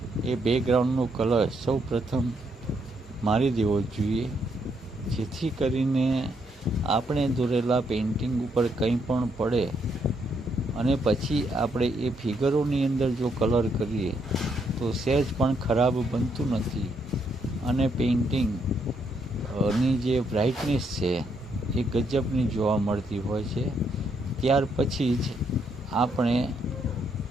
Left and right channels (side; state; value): both; normal; correlation 0.75